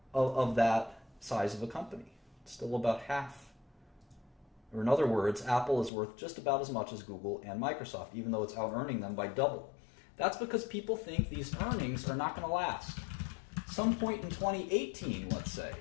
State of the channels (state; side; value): drops out; right; at 5.9 s